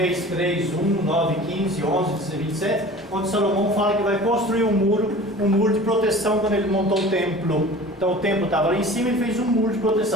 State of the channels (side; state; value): both; normal; correlation 0.41